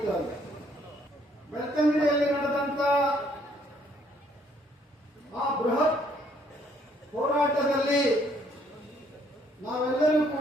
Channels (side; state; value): both; normal; correlation 0.66